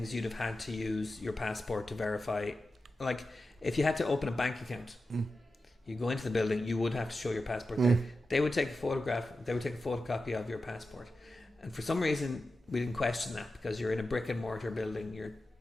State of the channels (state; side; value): normal; both; correlation 0.91